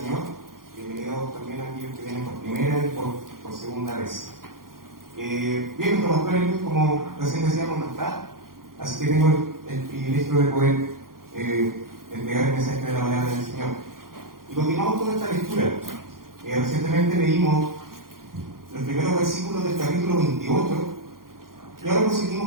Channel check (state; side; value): late; left; 0.91 ms